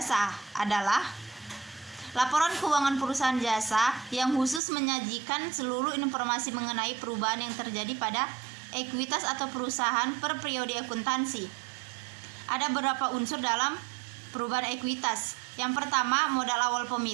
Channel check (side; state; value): left; drops out; at 4.6 s